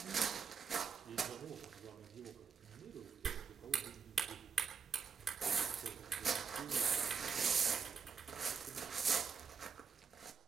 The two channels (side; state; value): left; quieter; 5.9 dB